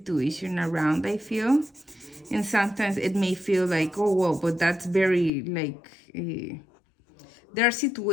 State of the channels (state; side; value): drops out; right; at 5.3 s